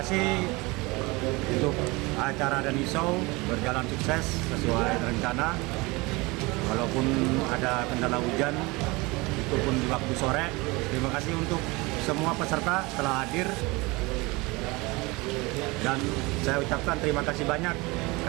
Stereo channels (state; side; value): quieter; left; 24.2 dB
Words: untuk acara Dhany Show berjalan sukses sesuai rencana. Walaupun ada kendala hujan, itu pun di waktu sore. Terima kasih untuk semua peserta telah hadir. Dan saya ucapkan terima kasih banyak